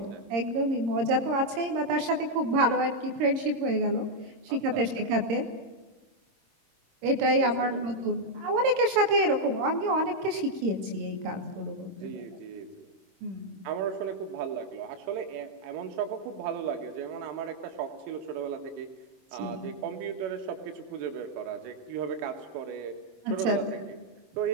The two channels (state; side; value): late; left; 26 ms